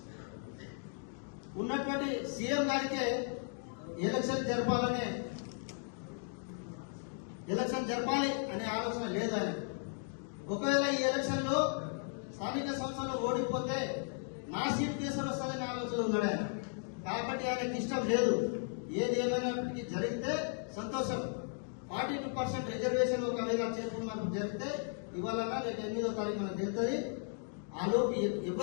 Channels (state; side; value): silent; right; 54 dB below the other